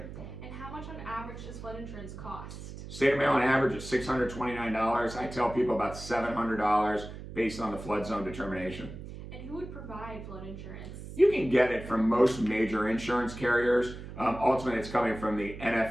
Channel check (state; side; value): noise; right; hum, 11 dB below the sound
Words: And how much on average does flood insurance cost? State of Maryland average is $629. I tell people about $700 based on the flood zone determination. And who would provide flood insurance? You can get it from most major insurance carriers. Ultimately, it's coming from the